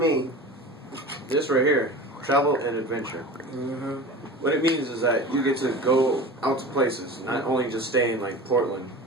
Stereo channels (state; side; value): normal; both; correlation 0.34